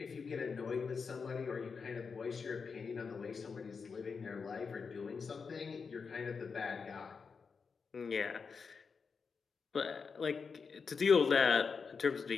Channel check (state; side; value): quieter; right; 5.4 dB